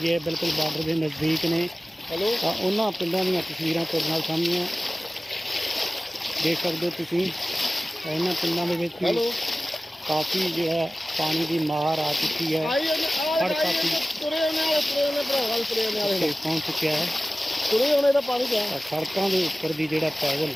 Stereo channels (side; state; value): both; normal; correlation 0.96